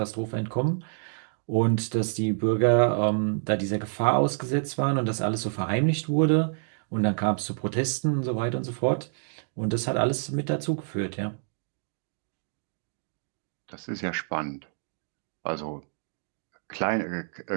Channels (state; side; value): silent; left; digital silence